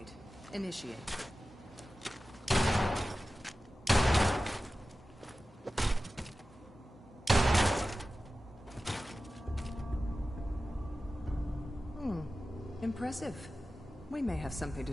initiate. Impressive. We may have something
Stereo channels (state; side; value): normal; both; correlation 0.95